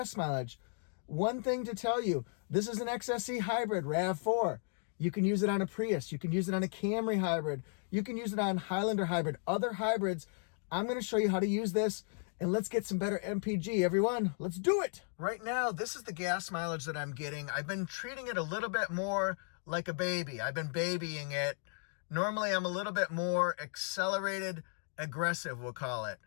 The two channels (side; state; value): right; silent; 54 dB below the other